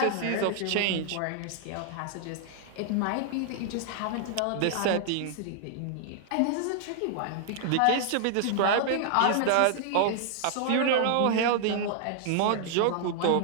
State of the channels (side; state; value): both; different; correlation 0.00